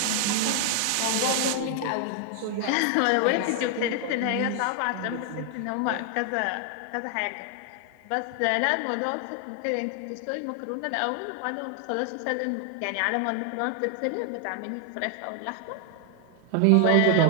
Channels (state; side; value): different; both; correlation 0.00